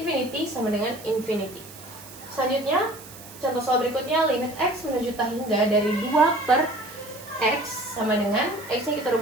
sama dengan infinity. Selanjutnya, contoh soal berikutnya, limit x menuju tak hingga dari 2 per x sama dengan x-nya kita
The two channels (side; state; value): right; noise; hiss, 17 dB below the sound